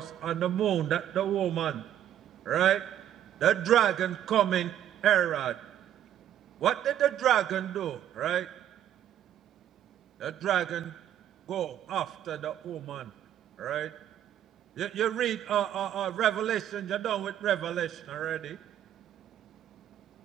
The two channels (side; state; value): left; quieter; 11.0 dB